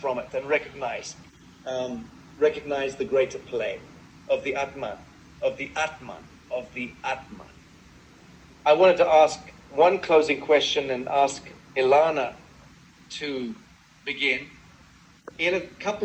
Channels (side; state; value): both; identical; correlation 1.00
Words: from it and recognize the greater play of the Atman, of the Atman, of the Atman. I wanted to ask one closing question and ask Ilana to begin. In a